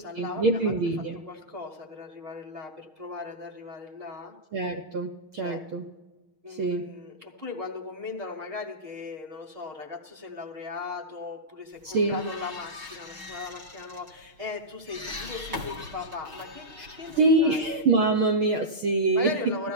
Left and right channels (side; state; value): left; late; 6.4 ms